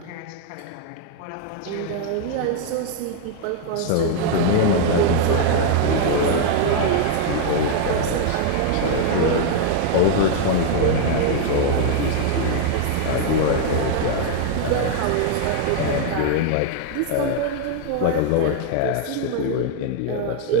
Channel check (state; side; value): different; both; correlation 0.00